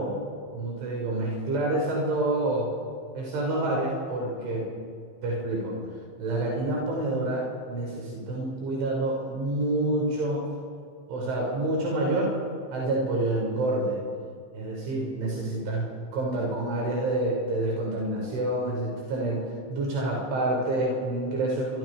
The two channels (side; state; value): left; late; 15 ms